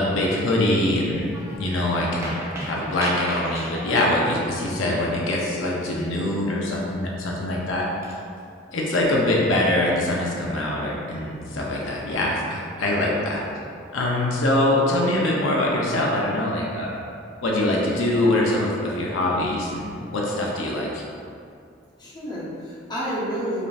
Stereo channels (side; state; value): both; normal; correlation 0.37